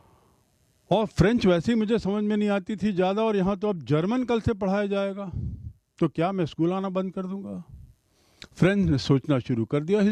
और फ्रेंच वैसे ही मुझे समझ में नहीं आती थी ज़्यादा, और यहाँ तो अब जर्मन कल से पढ़ाया जाएगा, तो क्या मैं स्कूल आना बंद कर दूंगा? फ्रेंच ने सोचना शुरू कर दिया. He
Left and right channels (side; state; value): both; identical; correlation 1.00